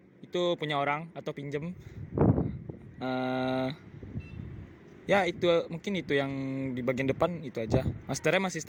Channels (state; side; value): identical; both; correlation 1.00